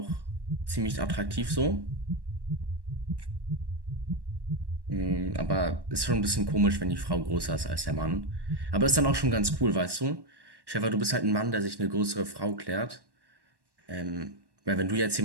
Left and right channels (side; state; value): left; late; 1.1 ms